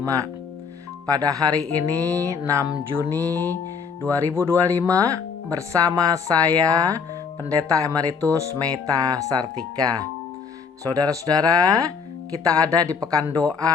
Pada hari ini 6 Juni 2025 bersama saya Pendeta Emeritus Meta Sartika. Saudara-saudara, kita ada di pekan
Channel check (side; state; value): right; quieter; 5.8 dB